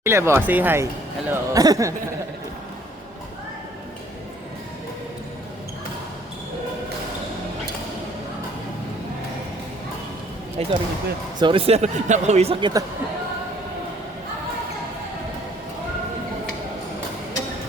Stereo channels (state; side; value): normal; both; correlation 0.59